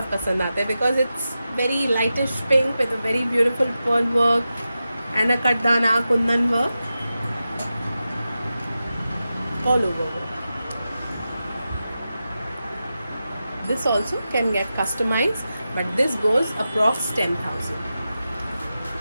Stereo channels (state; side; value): inverted; both; correlation -0.92